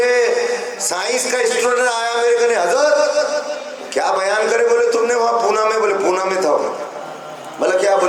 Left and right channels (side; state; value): both; identical; correlation 1.00